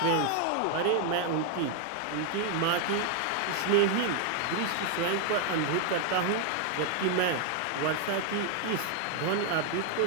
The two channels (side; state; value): both; different; correlation 0.00